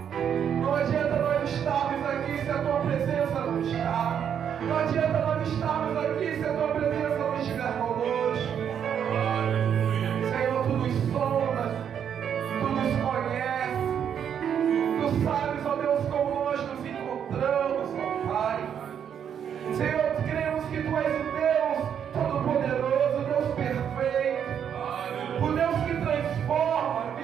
não adianta nós estarmos aqui se a Tua presença não está. Não adianta nós estarmos aqui se a Tua presença não estiver conosco. Senhor, Tu nos sondas, Tu nos conheces, Tu sabes, ó Deus, como nós nos encontramos, ó Pai. Senhor, cremos que Tu és o Deus Todo-Poderoso, o Deus perfeito, o Deus que transforma a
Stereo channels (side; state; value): left; quieter; 8.5 dB